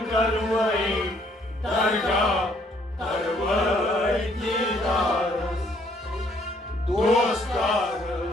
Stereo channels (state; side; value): normal; both; correlation 0.66